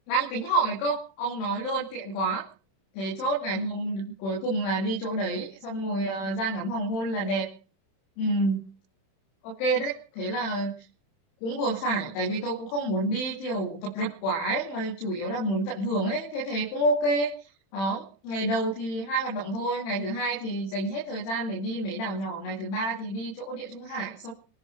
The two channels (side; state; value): right; late; 31 ms